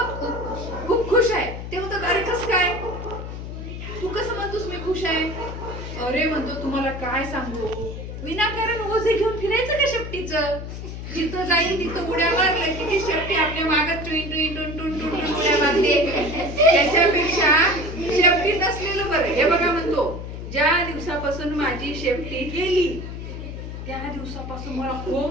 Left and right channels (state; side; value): noise; left; hum, 8 dB below the sound